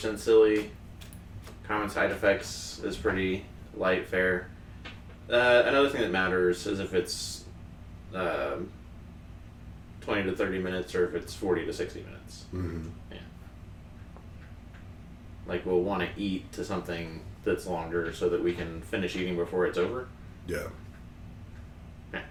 silly. Common Side Effects is pretty light fare. Another thing that matters is if it's 20 to 30 minutes or if it's 40 to 60 minutes. Mm-hmm. Yeah. Like we'll want to eat to something that's longer so that we can finish eating before it's over. Yeah. Yeah.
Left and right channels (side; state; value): both; identical; correlation 1.00